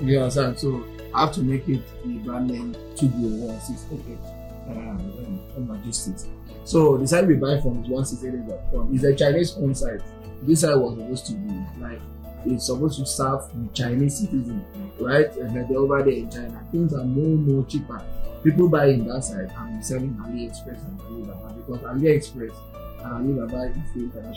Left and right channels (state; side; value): identical; both; correlation 1.00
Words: You understand? So I have to make it the brand name Tugrow 1688 logistics. So the site we buy from is 1688.com. It's a Chinese owned site. This site was supposed to be like, it's supposed to serve the Chinese citizens, right? And they're over there in China. Things are more cheaper. People buy in that side and selling AliExpress and Alibaba, because AliExpress and Alibaba is the